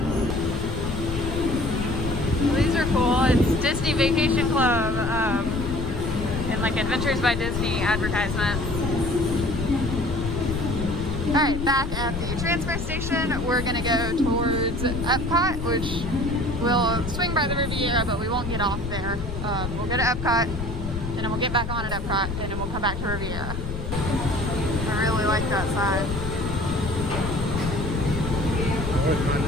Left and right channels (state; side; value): noise; left; rumble, 6 dB below the sound